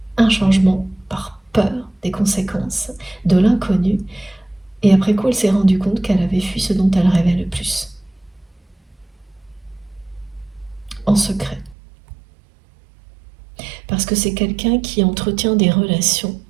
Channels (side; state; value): left; drops out; at 11.8 s